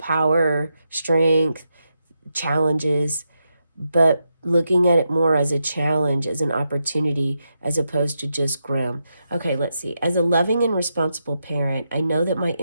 strength, challenges, but looking at it more as a challenge, as an opportunity, as opposed to just grim. Okay, let's see. As a loving and responsible parent, I know that my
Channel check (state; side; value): inverted; both; correlation -0.85